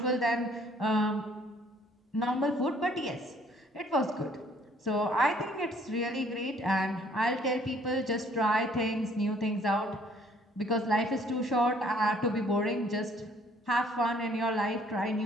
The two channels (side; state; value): both; normal; correlation 0.60